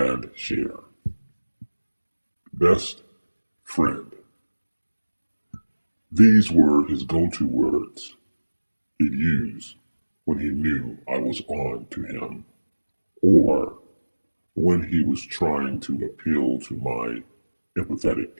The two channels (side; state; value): both; inverted; correlation -1.00